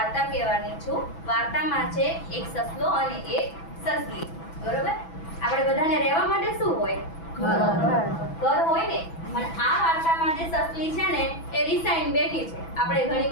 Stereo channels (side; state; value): right; late; 6.0 ms